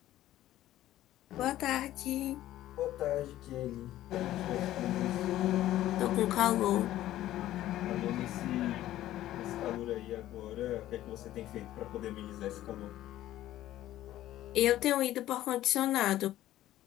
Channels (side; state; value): right; quieter; 13.9 dB